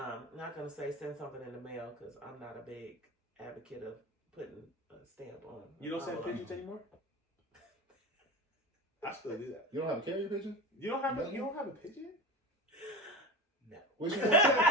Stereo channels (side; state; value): both; normal; correlation 0.27